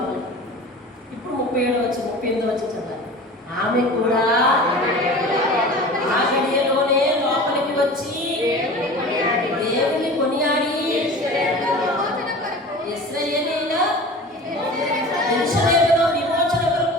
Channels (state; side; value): normal; both; correlation 0.37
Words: ఇప్పుడు 38 వచ్చి చదవాలి. ఆమె కూడా ఆ గడియలోనే లోపలికి వచ్చి దేవుని కొనియాడి యెరూషలేములో విమోచన